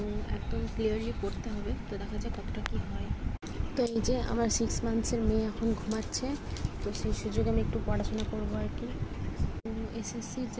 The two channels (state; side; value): identical; both; correlation 1.00